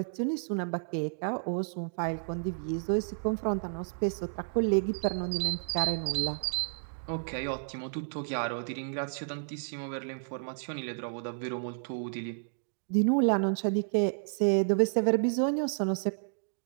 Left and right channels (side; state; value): left; silent; digital silence